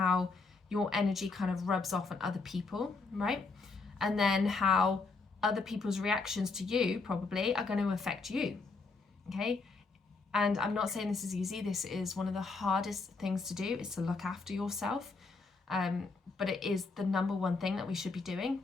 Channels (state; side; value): quieter; right; 4.1 dB